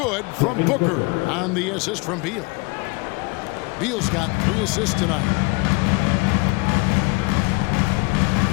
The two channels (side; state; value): right; quieter; 26.2 dB